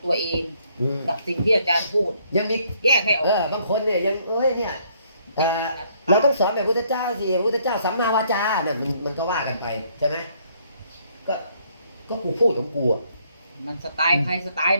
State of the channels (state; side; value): inverted; both; correlation -0.67